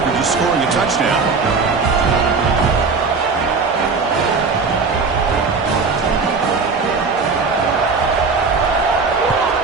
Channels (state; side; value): quieter; left; 4.6 dB